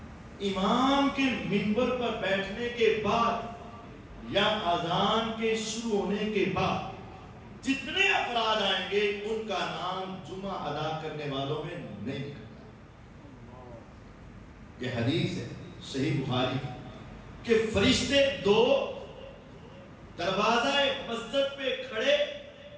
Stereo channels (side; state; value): both; identical; correlation 1.00